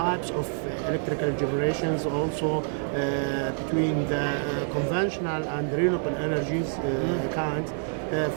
of electrical generations also between the conventional and renewable energies kinds.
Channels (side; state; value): left; silent; 60 dB below the other